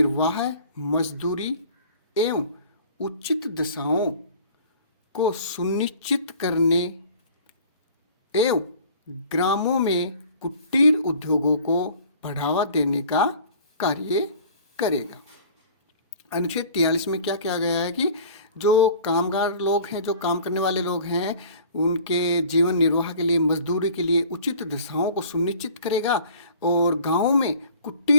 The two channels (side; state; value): both; inverted; correlation -0.48